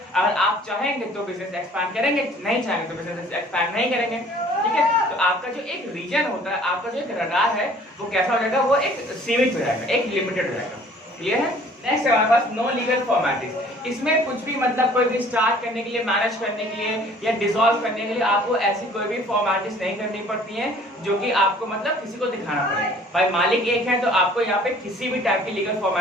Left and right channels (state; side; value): normal; both; correlation 0.53